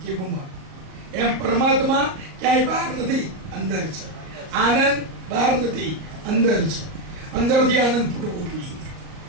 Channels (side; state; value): left; late; 38 ms